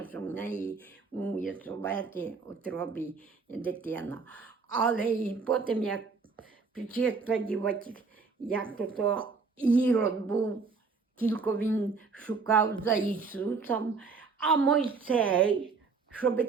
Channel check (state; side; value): quieter; left; 4.7 dB